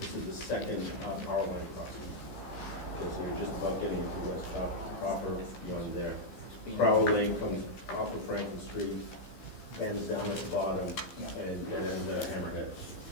is the second power line crossing. Okay, so you're just about getting into West proper one there. Crowell Lane comes off of Franklin Street, ends down at the bottom, and ends at Hammerhead.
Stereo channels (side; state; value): right; late; 15 ms